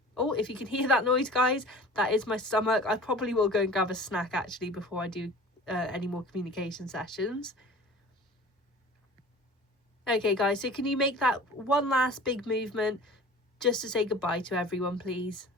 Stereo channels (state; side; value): normal; both; correlation 0.42